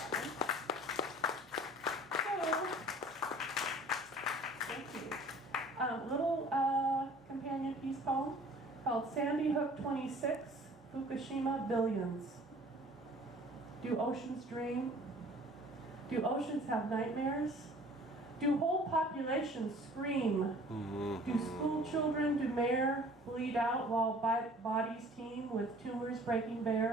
Little companion piece poem called Sandy Hook 26, Fukushima Billions. Do oceans dream? Do oceans have nightmares? Do whole populations scream? Do school children, do mayor bleed out while bodies teem with tumors breaking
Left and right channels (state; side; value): normal; both; correlation 0.50